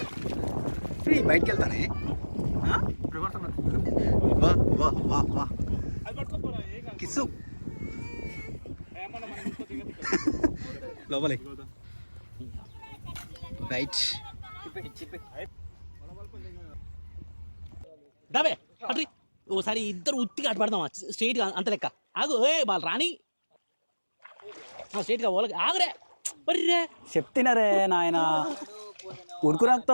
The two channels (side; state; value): both; inverted; correlation -1.00